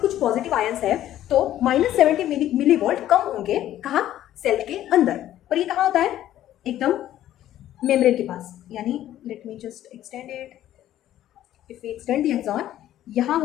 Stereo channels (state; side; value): quieter; right; 12.6 dB